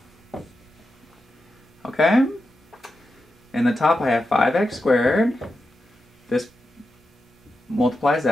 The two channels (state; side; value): normal; both; correlation 0.89